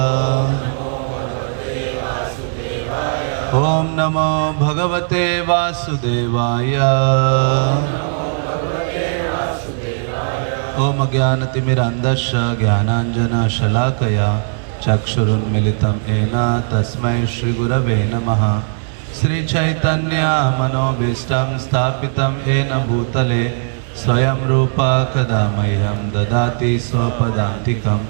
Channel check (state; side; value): silent; left; digital silence